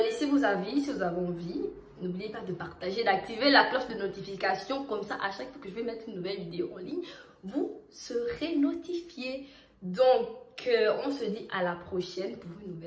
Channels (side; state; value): both; identical; correlation 1.00